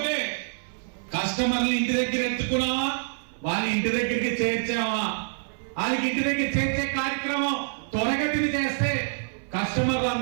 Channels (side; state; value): left; silent; 57 dB below the other